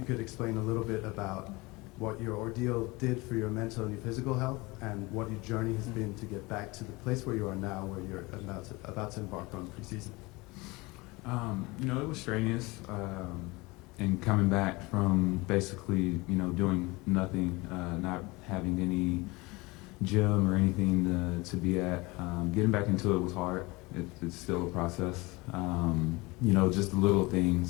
could explain a little bit about what your ordeal did for your mental and your physical health, and what your journey has been to get back to the place where you are now, where you're about to embark on preseason. You know, it was strenuous. And coming back from basically, you know, doing nothing, not having any gym or anything to be at, getting back into it was hard. It's still a process. You know, just the little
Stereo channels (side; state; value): right; quieter; 23.7 dB